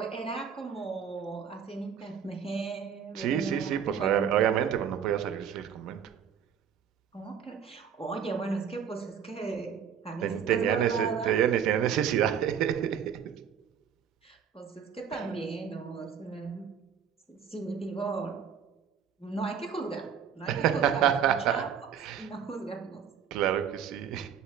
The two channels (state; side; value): quieter; left; 8.0 dB